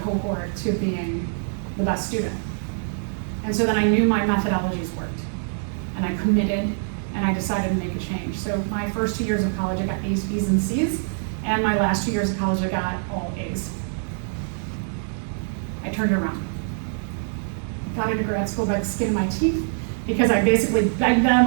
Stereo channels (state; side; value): silent; left; 56 dB below the other